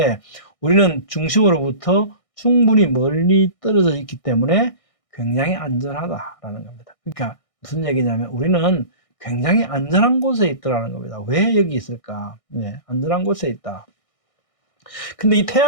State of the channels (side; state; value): right; late; 1.6 ms